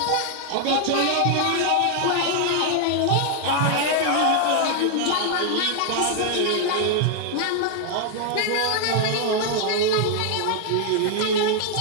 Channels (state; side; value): different; both; correlation 0.00